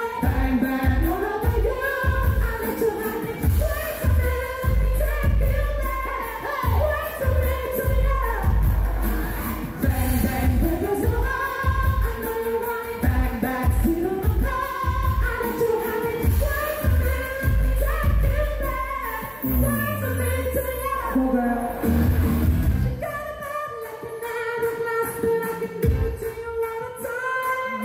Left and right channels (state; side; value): identical; both; correlation 1.00